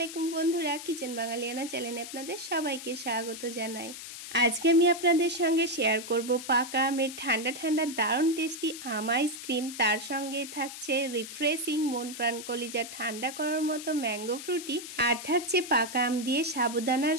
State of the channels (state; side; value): noise; left; hiss, 11 dB below the sound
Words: বন্ধুরা, কিচেন বাঙালিয়ানা চ্যানেলে আপনাদের সবাইকে স্বাগত জানাই। আজকে আমি আপনাদের সঙ্গে শেয়ার করব পাকা আমের ঠান্ডা ঠান্ডা দারুণ টেস্টি আম আইসক্রিম। তার সঙ্গে থাকছে রিফ্রেশিং মন প্রাণ কলিজা ঠান্ডা করার মতো ম্যাঙ্গো ফ্রুটি, আর থাকছে পাকা আম দিয়ে সাবুদানার